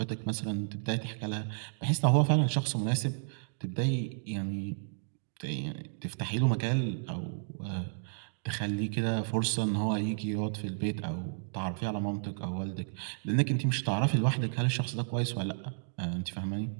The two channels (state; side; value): silent; left; digital silence